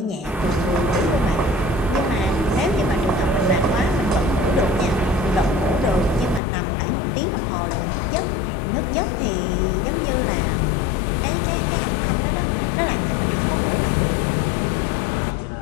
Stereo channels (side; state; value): right; drops out; at 6.4 s